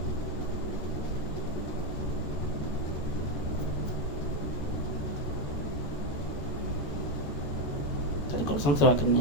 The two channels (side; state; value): right; late; 14 ms